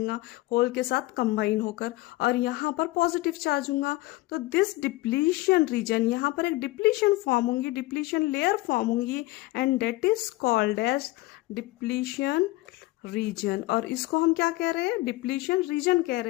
होल के साथ कंबाइन होकर, और यहाँ पर पॉजिटिव चार्ज होगा। तो दिस डिप्लीशन रीजन, यहाँ पर एक डिप्लीशन फॉर्म होंगी, डिप्लीशन लेयर फॉर्म होंगी, and that is called as depletion region. और इसको हम क्या कह रहे हैं, डिप्लीशन रीजन कह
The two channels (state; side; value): quieter; right; 19.9 dB